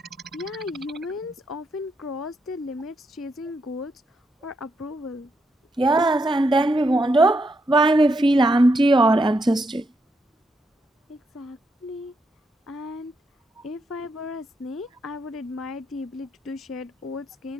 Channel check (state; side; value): normal; both; correlation 0.80